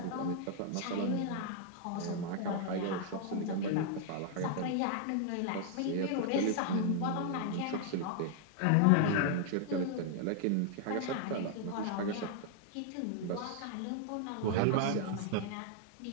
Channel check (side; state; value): both; different; correlation 0.00